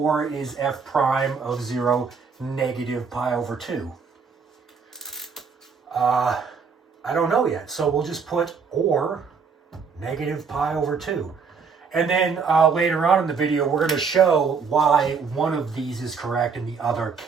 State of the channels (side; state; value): left; quieter; 5.6 dB